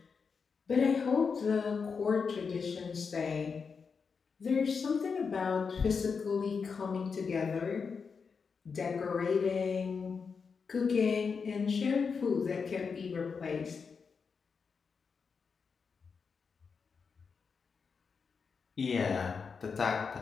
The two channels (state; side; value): quieter; right; 5.5 dB